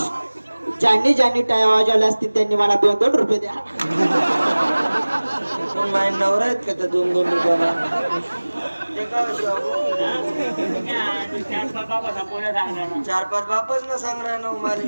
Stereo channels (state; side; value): inverted; both; correlation -1.00